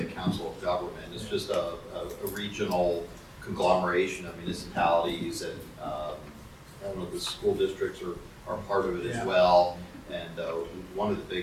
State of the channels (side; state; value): both; identical; correlation 1.00